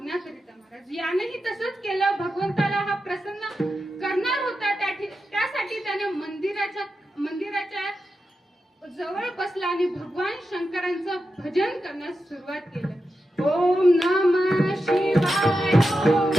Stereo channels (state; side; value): normal; both; correlation 0.89